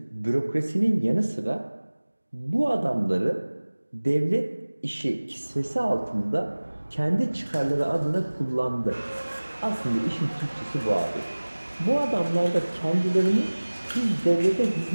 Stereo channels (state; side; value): inverted; both; correlation -1.00